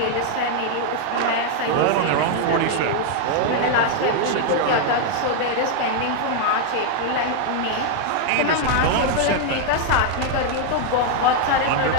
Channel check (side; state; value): both; different; correlation 0.00